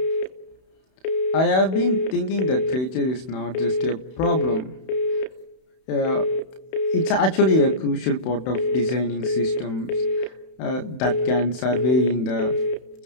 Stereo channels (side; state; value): right; late; 31 ms